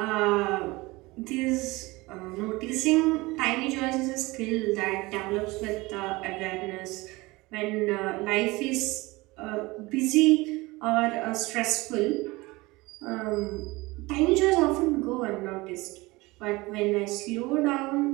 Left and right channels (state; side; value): quieter; left; 22.2 dB